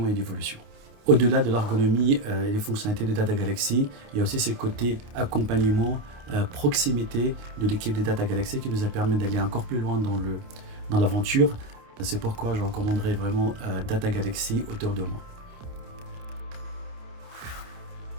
et d'évolution. Au-delà de l'ergonomie et des fonctionnalités de Data Galaxy, il y a aussi ce côté accompagnement, proximité de l'équipe de Data Galaxy qui nous a permis d'aller encore plus loin dans l'aventure. C'est pourquoi je recommanderais vraiment Data Galaxy autour de moi.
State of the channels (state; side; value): late; left; 29 ms